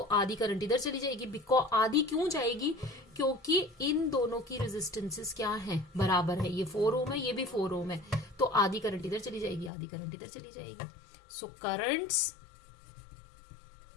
आधी करंट इधर चली जाएगी। बिकॉज आधी क्यों जाएगी, क्योंकि इन दोनों की रेजिस्टेंसेस क्या है, बराबर है। ये 4 ओम है, ये भी 4 ओम है, तो आधी करंट इधर चली जाएगी, आधी करंट इधर चली जाएगी। सो करंट्स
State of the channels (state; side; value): drops out; right; at 9.7 s